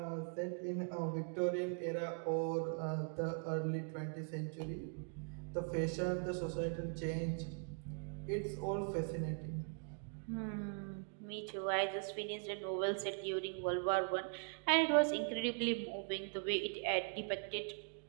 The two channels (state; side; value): silent; left; 51 dB below the other